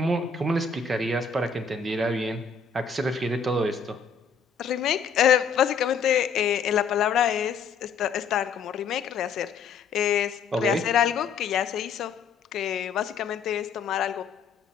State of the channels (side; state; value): right; quieter; 5.8 dB